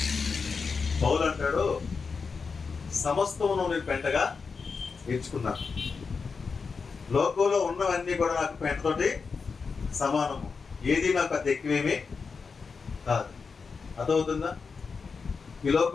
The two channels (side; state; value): right; quieter; 5.1 dB